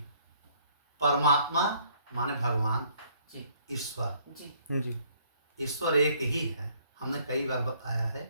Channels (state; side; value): inverted; both; correlation -0.63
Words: परमात्मा माने भगवान जी ईश्वर जी जी ईश्वर एक ही है। हमने कई बार बताया है